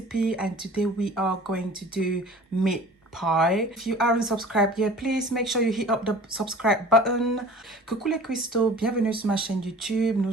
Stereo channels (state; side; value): normal; both; correlation 0.45